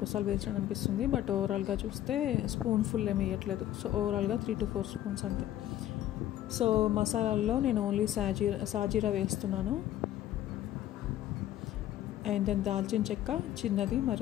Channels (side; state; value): right; quieter; 12.7 dB